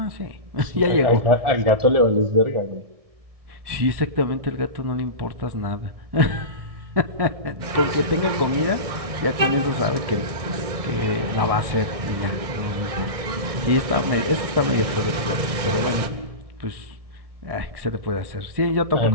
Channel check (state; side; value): late; left; 1.6 ms